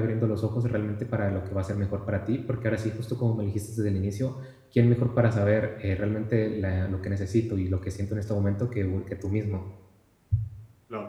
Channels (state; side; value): identical; both; correlation 1.00